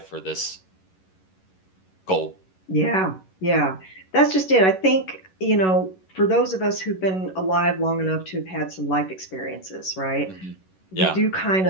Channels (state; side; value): late; right; 11 ms